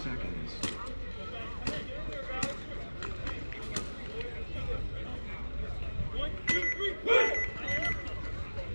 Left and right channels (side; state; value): both; inverted; correlation -1.00